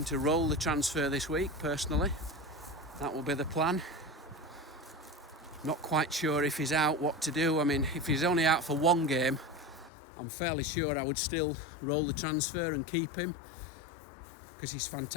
to roll the transfer this week, personally. That will be the plan. Not quite sure if he's out, what to do. I mean, if he's only out for 1 game, I'm fairly sure I would still roll the transfer and keep him, because he's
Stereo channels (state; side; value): drops out; right; at 9.9 s